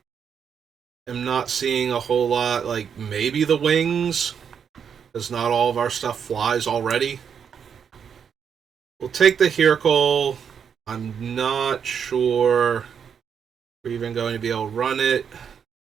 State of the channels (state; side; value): quieter; left; 7.4 dB